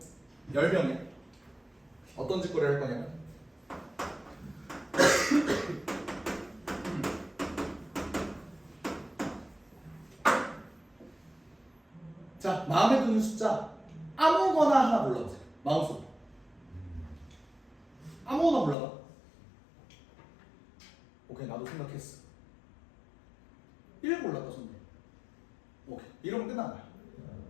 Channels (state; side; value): drops out; right; at 18.8 s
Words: 10명에 어떤 짓거리를 할 거냐면 자, 마음에 드는 숫자 아무거나 하나 골라보세요. 마음속에 아무거나 골라봐. 오케이, 나도 생각했어. 1 골랐다 손님. 오케이, 이러면 끝난 거야.